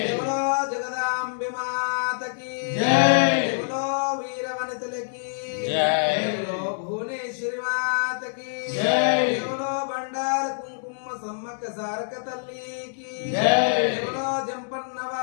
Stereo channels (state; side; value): silent; right; 61 dB below the other